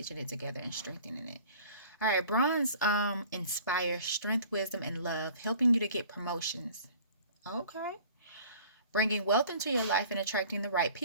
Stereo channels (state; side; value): inverted; both; correlation -0.49